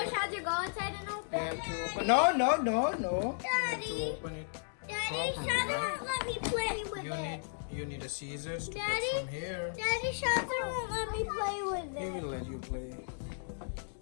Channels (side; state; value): right; silent; digital silence